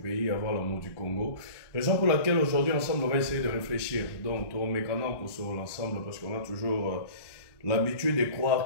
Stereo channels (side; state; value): right; late; 1.2 ms